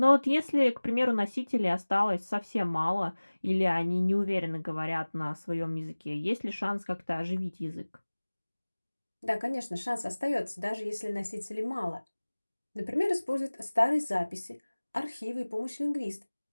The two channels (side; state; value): both; inverted; correlation -1.00